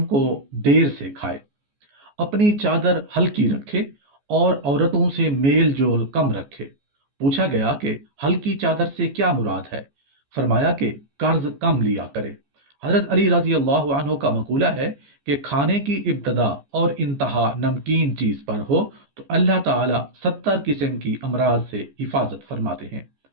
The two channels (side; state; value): left; late; 14 ms